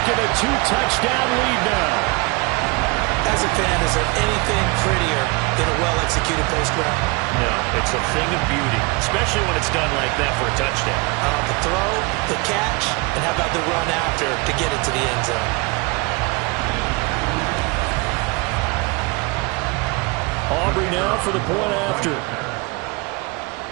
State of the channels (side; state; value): left; quieter; 27.5 dB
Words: a 2-touchdown lead now. As a fan, is there anything prettier than a well-executed post route? No, it's a thing of beauty, especially when it's done like that for a touchdown. The throw, the catch, and how about the run after to get it to the end zone? Aubrey now for the point after.